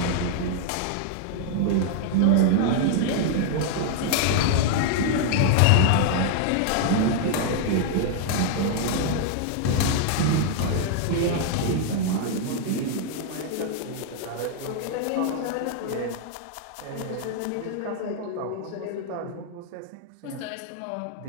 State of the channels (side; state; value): both; different; correlation 0.00